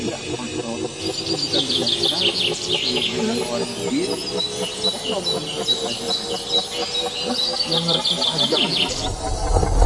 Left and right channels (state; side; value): identical; both; correlation 1.00